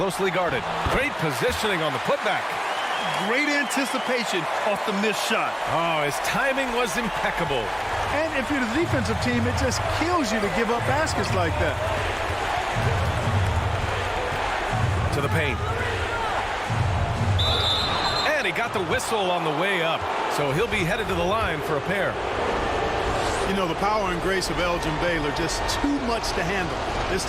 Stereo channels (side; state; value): both; identical; correlation 1.00